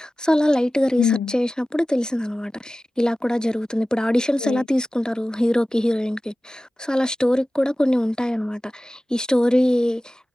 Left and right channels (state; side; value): normal; both; correlation 0.96